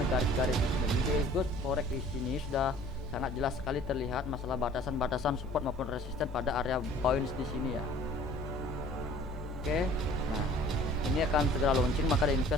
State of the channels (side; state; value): both; normal; correlation 0.51